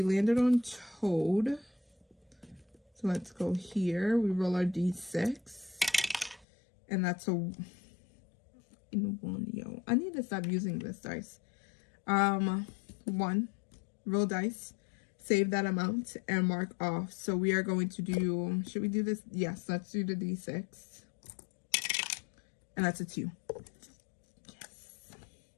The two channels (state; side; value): drops out; right; at 6.5 s